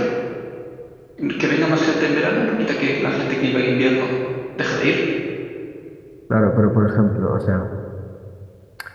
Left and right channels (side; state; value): both; identical; correlation 1.00